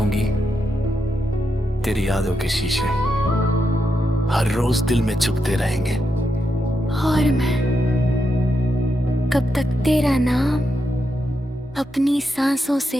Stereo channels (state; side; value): normal; both; correlation 0.84